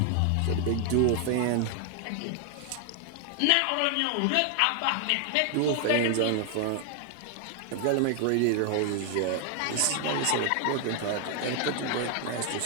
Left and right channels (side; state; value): both; different; correlation 0.00